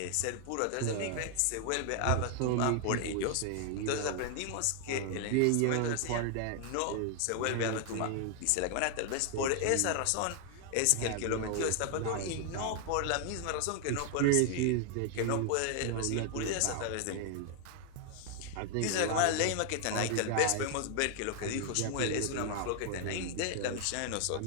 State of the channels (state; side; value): different; both; correlation 0.00